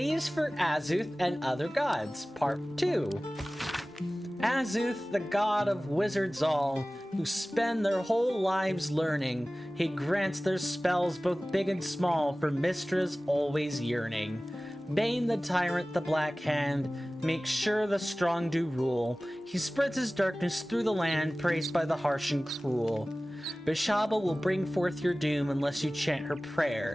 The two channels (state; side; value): normal; both; correlation 0.97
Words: is for Azuth and other gods, part 2. Azuth, the god of wizards all, who spend their whole lives learning. He grants their spells both big and small for Mistra's always yearning. Bane the tyrant, the black hand, makes sure the strong do rule. He spreads his darkness through the land, praised by the harsh and cruel. Bishaba will bring forth your doom unless you chant her